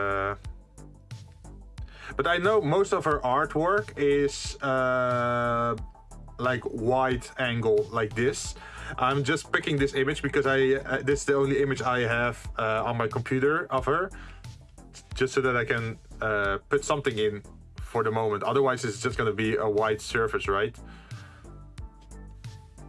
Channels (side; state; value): both; identical; correlation 1.00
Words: But I know most of her artwork is like wide angle like this. I'm just picking this image because this is the only image I have on my computer of her. Just so that I can put something in for the moment. Otherwise, it's just going to be a white surface, right?